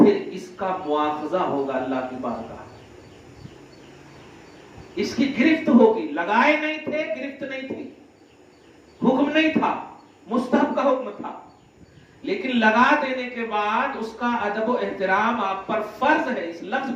اس کا مواخذہ ہوگا اللہ کی بارگاہ، اس کی گرفت ہوگی. لگائے نہیں تھے، گرفت نہیں تھی، حکم نہیں تھا، مستحب کا حکم تھا، لیکن لگا دینے کے بعد اس کا ادب و احترام آپ پر فرض ہے. اس لفظ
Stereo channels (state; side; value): identical; both; correlation 1.00